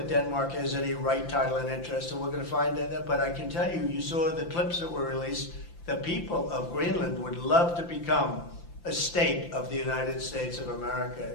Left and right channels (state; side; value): late; right; 5.9 ms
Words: Denmark has any right, title, and interest, so we're going to find that. But I can tell you, you saw the clips that were released. The people of Greenland would love to become a state of the United States of America.